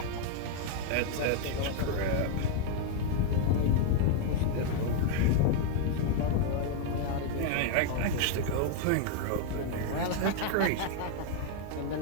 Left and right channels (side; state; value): both; different; correlation 0.00